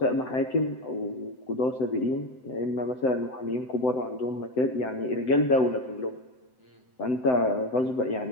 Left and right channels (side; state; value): right; late; 7.8 ms